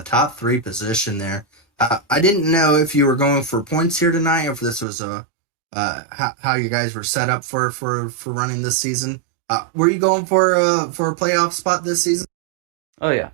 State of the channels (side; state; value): left; drops out; at 4.9 s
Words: top 3 position there. I didn't know if you were going for points here tonight, or if this was how you guys were set up for running this season. Were you going for a playoff spot this season? Oh yeah.